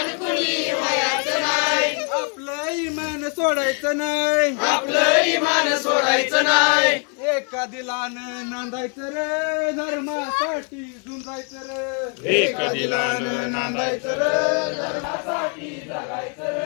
कुणी व्हायचं नाही आपलं इमान सोडायचं नाही आपलं इमान सोडायचं नाही एका दिलानं नांदायचं रे धर्मासाठी झुंजायचं रे एका दिलानं नांदायचं रे धर्मासाठी जगायचं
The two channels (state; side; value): quieter; right; 39.8 dB